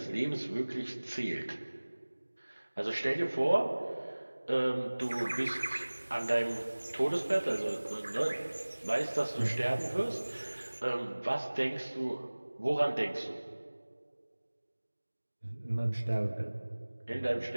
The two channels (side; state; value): both; inverted; correlation -1.00